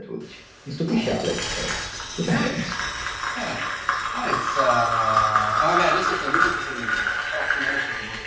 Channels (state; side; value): identical; both; correlation 1.00